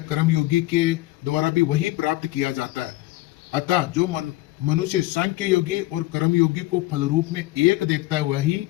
कर्मयोगी के द्वारा भी वही प्राप्त किया जाता है। अतः जो मनुष्य सांख्य योगी और कर्मयोगी को फल रूप में एक देखता है वही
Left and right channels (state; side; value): quieter; right; 18.3 dB